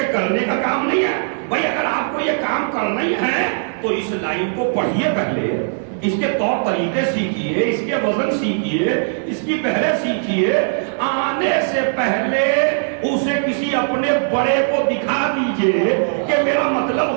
کرنے کا کام نہیں ہے. بھائی اگر آپ کو یہ کام کرنا ہی ہے تو اس لائن کو پڑھیے, پہلے اس کے طور طریقے سیکھیے, اس کے وزن سیکھیے, اس کی پہلے سیکھیے. آنے سے پہلے اسے کسی اپنے بڑے کو دکھا دیجئے کہ میرا مطلب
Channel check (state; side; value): silent; left; 66 dB below the other